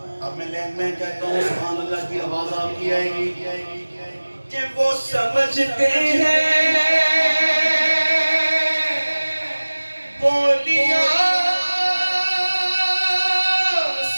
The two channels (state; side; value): inverted; both; correlation -1.00